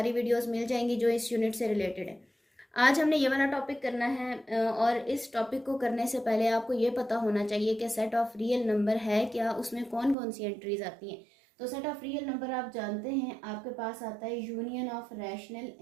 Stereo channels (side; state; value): left; drops out; at 10.2 s